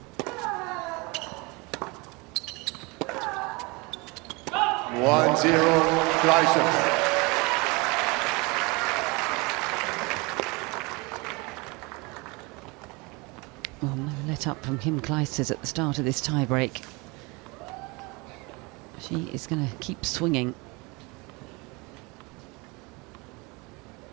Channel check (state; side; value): quieter; left; 26.8 dB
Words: One zero, Clijsters. Well, no let up from Kim Clijsters at the start of this tie-break. She is going to keep swinging.